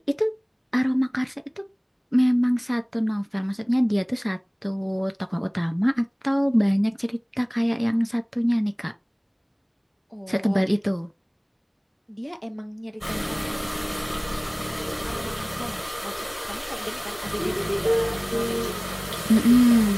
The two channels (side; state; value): both; identical; correlation 1.00